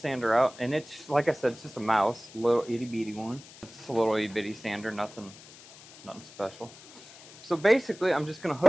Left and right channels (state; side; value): noise; left; hiss, 19 dB below the sound